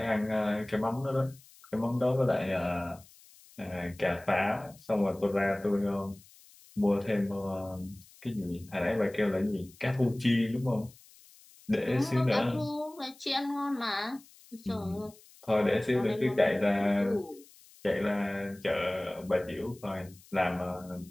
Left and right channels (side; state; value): left; noise; hiss, 25 dB below the sound